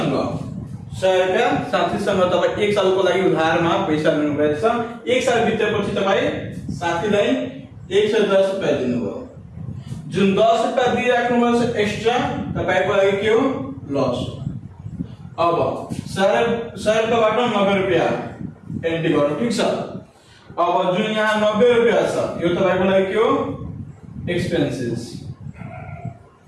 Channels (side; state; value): both; identical; correlation 1.00